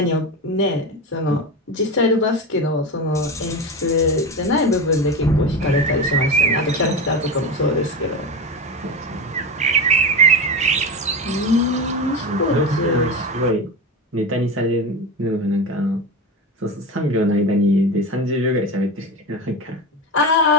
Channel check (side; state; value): both; normal; correlation 0.21